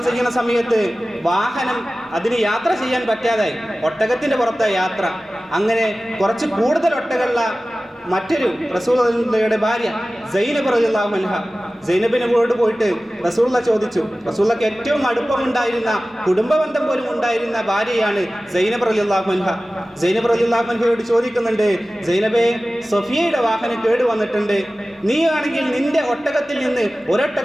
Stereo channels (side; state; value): both; normal; correlation 0.96